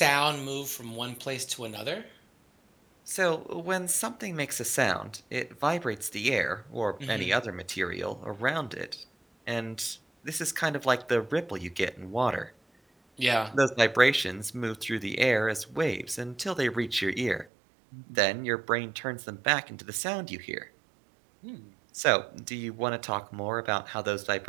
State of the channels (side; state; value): left; drops out; at 17.4 s